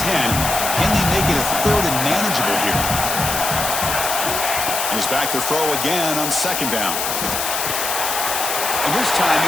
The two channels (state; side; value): noise; left; hiss, 2 dB below the sound